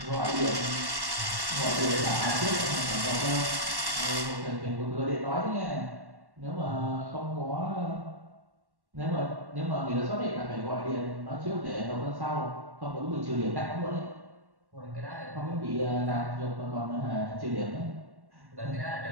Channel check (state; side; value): late; left; 1.1 ms